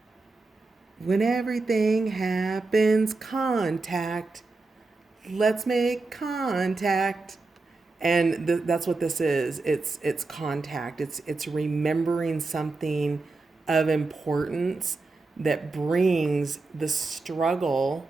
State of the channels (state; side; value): quieter; left; 3.6 dB